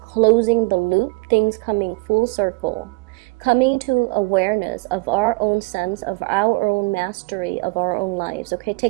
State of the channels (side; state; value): left; quieter; 28.0 dB